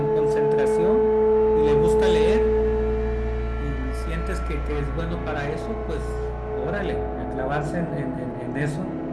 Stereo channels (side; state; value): both; identical; correlation 1.00